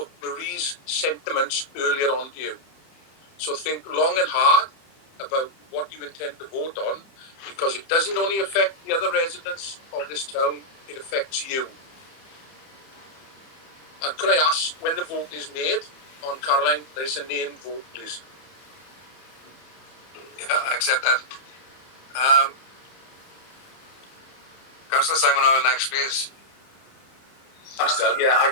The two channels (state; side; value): late; right; 30 ms